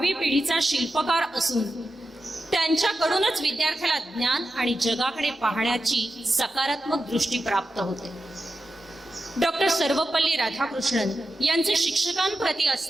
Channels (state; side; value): normal; both; correlation 0.90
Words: पिढीचा शिल्पकार असून त्यांच्याकडूनच विद्यार्थ्याला ज्ञान आणि जगाकडे पाहण्याची सकारात्मक दृष्टी प्राप्त होते. डॉक्टर सर्वपल्ली राधाकृष्णन यांचे शिक्षकांप्रती